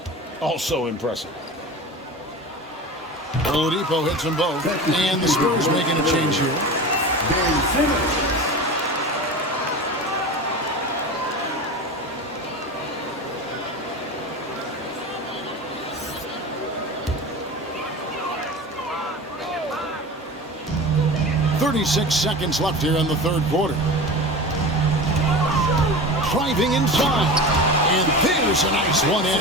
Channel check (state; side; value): normal; both; correlation 0.31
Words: also impressive. Oladipo hits them both, and the Spurs making a change here. Simmons. 36 seconds left here in the third quarter. Driving inside. And there's a nice